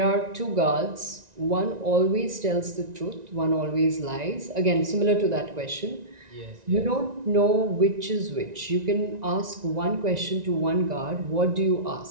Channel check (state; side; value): late; left; 1.9 ms